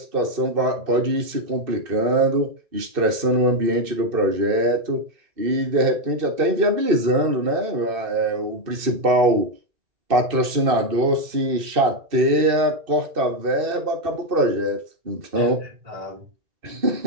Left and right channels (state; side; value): late; left; 2.6 ms